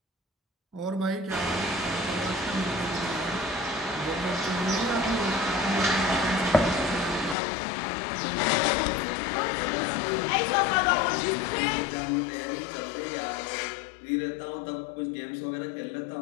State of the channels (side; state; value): right; drops out; at 7.4 s